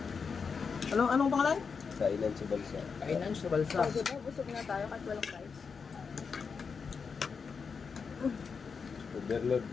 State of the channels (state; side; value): quieter; right; 5.6 dB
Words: Anong pangalan? Kainan sa balsa. Kainan sa balsa. So, diba, busog na tayo kahit walang price. Overload